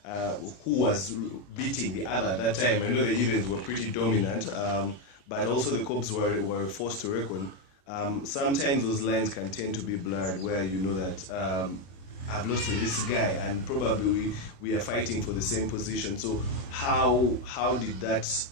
who was beating the other at that time. I know the Heathens were pretty dominant, but also the Cobs were forced to reckon. Sometimes those lines can tend to be blurred, where you know that I've lost to this guy, and probably we are fighting for the same position. So how did that,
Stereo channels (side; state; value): right; late; 21 ms